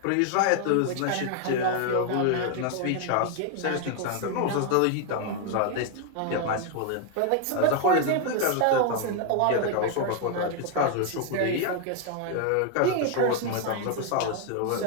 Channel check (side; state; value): both; different; correlation 0.00